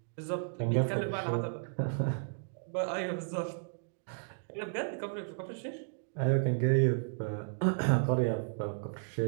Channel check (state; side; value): silent; left; digital silence